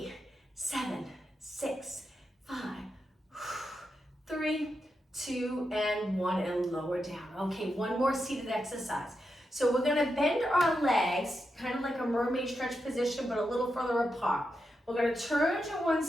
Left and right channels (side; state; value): both; normal; correlation 0.87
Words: 7, 6, 5, 3, 2, and 1, and lower down. Okay, 1 more seated exercise. So we're gonna bend our legs, kind of like a mermaid stretch position, but a little further apart. We're gonna turn to one